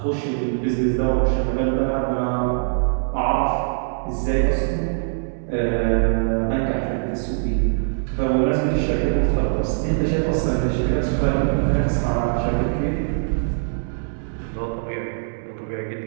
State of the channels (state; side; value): silent; left; digital silence